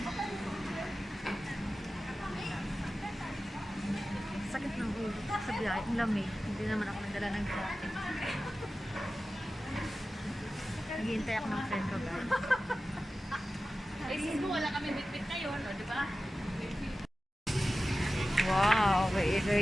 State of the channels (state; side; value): normal; both; correlation 0.94